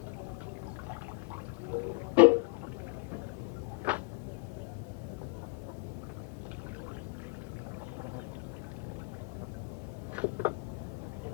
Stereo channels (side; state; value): right; quieter; 30.7 dB